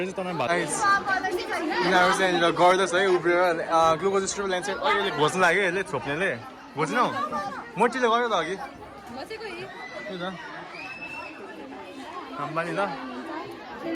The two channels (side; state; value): both; identical; correlation 1.00